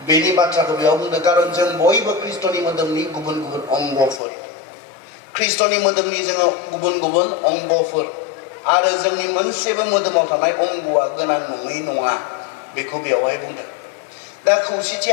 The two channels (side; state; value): right; drops out; at 4.2 s